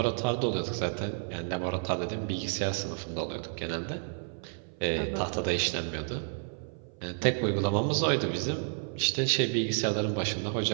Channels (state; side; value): silent; left; 56 dB below the other